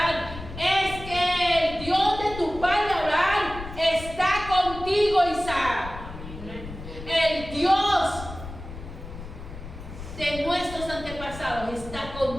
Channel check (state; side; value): noise; left; rumble, 12 dB below the sound